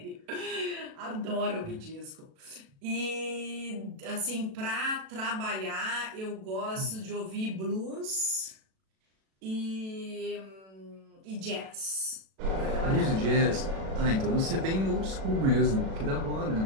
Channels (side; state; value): left; late; 37 ms